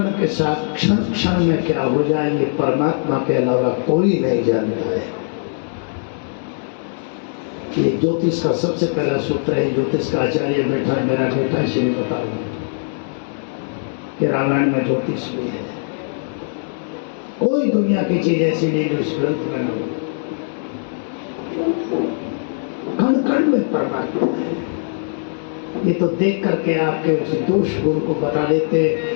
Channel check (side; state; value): right; silent; digital silence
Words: के साथ क्षण क्षण में क्या हो जाए ये परमात्मा के अलावा कोई नहीं जानता है। ये ज्योतिष का सबसे पहला सूत्र है। ज्योतिष का आचार्य बैठा है, मेरा बेटा, इसलिए बता रहा हूं कि रामायण में ज्योतिष भी है। कोई दुनिया की चीज ऐसी नहीं जो इस ग्रंथ में न हो। कण कण में परमात्मा है। ये तो देख करके आपके उस दोष गुण को बता देते